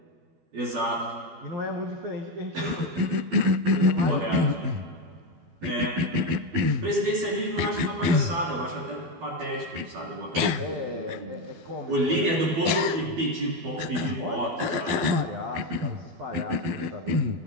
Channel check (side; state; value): left; late; 12 ms